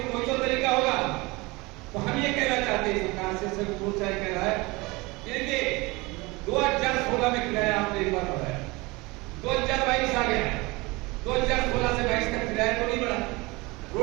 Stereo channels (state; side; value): quieter; left; 24.1 dB